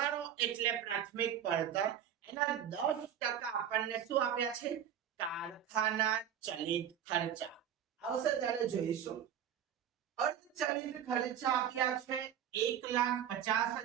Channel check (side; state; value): left; quieter; 9.5 dB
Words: એટલે પ્રાથમિક પડતર. એના 10% આપણને શું આપ્યા છે? કારખાના ચલિત ખર્ચા. આવશે ત્યારે જોઈશું. અર્ધચલિત ખર્ચા આપ્યા છે